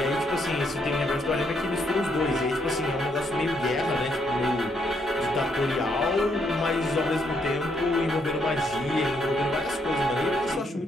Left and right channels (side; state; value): both; normal; correlation 0.74